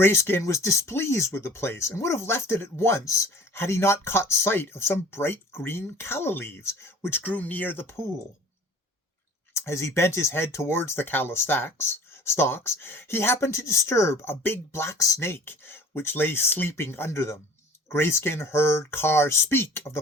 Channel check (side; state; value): both; normal; correlation 0.47